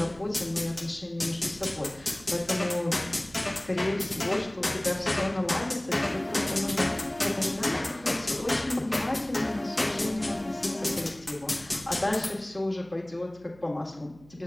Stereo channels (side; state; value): right; noise; hum, 24 dB below the sound